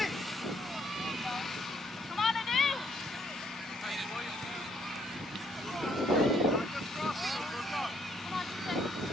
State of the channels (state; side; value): normal; both; correlation 0.69